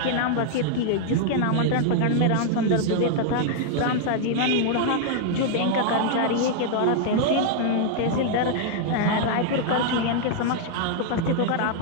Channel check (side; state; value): both; different; correlation -0.01